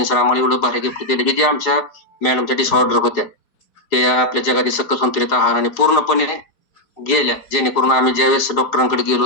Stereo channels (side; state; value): right; late; 4.8 ms